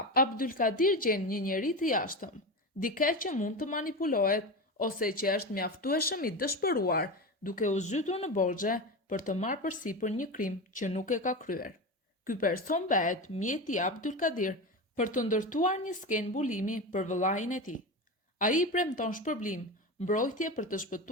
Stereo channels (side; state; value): both; normal; correlation 0.22